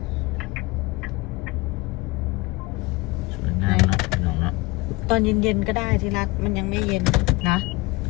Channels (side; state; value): right; quieter; 23.2 dB